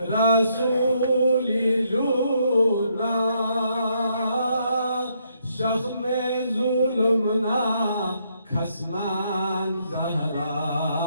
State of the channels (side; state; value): both; inverted; correlation -0.74